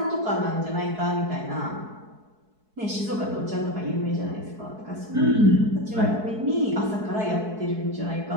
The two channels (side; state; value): left; late; 4.7 ms